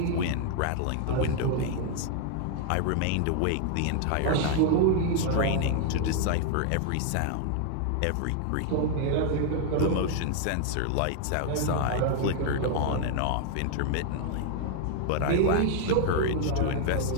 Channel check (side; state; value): both; different; correlation 0.00